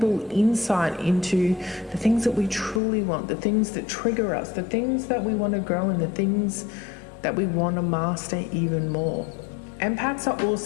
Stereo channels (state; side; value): drops out; right; at 2.8 s